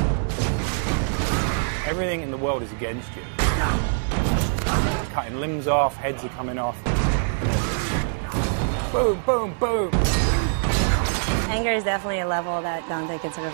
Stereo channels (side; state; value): left; silent; digital silence